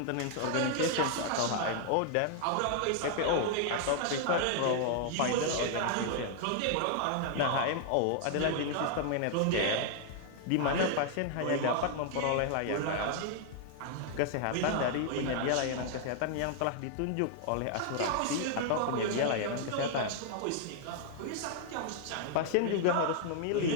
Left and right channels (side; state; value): both; different; correlation 0.00